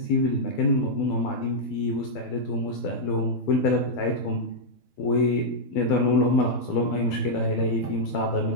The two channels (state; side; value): late; right; 12 ms